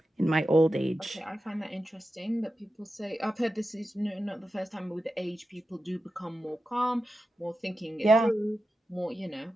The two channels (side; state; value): both; normal; correlation 0.91